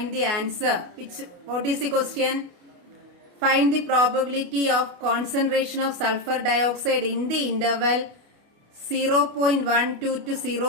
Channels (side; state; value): left; late; 28 ms